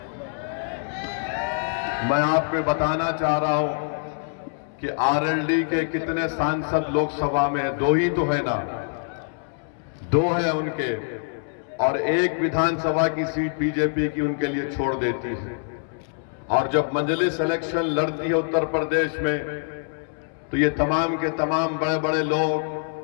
मैं आपको बताना चाह रहा हूं कि आरएलडी के कितने सांसद लोकसभा में है? 2 ही तो है ना, 2 है उनके, और एक विधानसभा की सीट बीजेपी की उनके लिए छोड़ देती है। और जब मजलिस इलेक्शन लड़ती है उत्तर प्रदेश में, तो ये तमाम के तमाम बड़े बड़े लोग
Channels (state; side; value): silent; right; 62 dB below the other